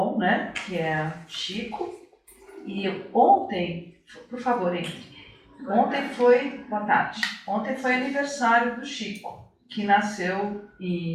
né? Que é Chico. E ontem, por favor, entre. Boa tarde. Ontem foi aniversário do Chico, que nasceu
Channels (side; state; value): both; identical; correlation 1.00